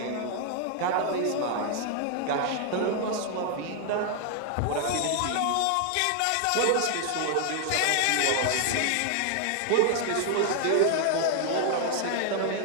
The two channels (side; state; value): both; different; correlation 0.00